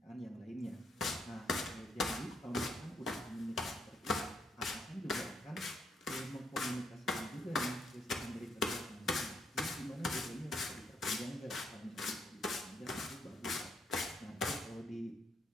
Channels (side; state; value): both; normal; correlation 0.74